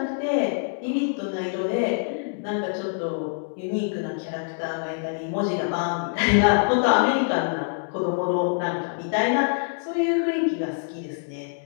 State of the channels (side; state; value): right; silent; 62 dB below the other